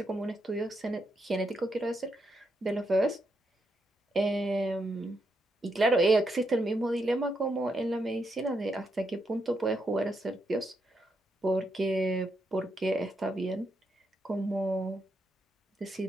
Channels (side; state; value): both; normal; correlation 0.81